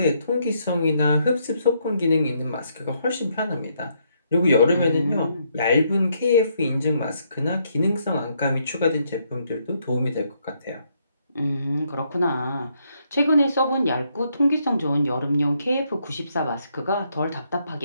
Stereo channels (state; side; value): inverted; both; correlation -0.74